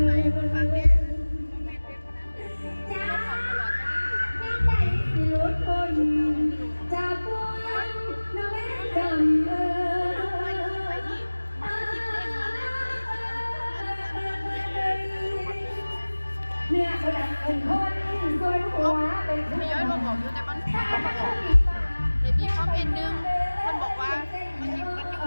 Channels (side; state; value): both; inverted; correlation -1.00